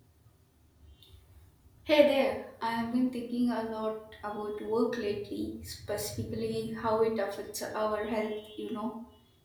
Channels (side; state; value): both; identical; correlation 1.00